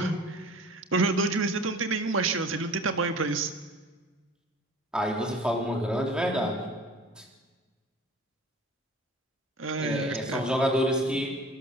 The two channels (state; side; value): normal; both; correlation 0.43